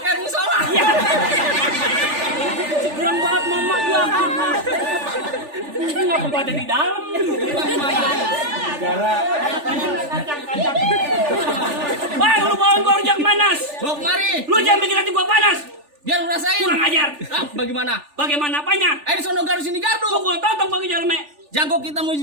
musola. Ya. Kurang banget mama ya. Ini ngapa gua ada di dalam? Bang, lu bawa gua rujak manas. Bawa kemari. Lu jangan bikin hati gua panas. Biar lu rasain. Kurang ajar. Ah, bagaimana? Bagaimana apanya? Di sono gardu sini gardu. Gua tahu bagi jalme. Jago kita mau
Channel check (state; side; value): late; left; 3.4 ms